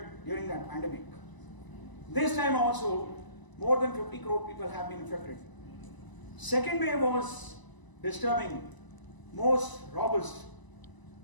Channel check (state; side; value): late; right; 1.0 ms